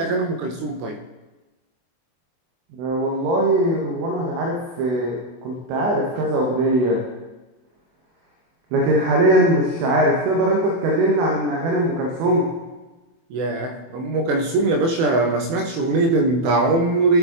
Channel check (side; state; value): left; late; 24 ms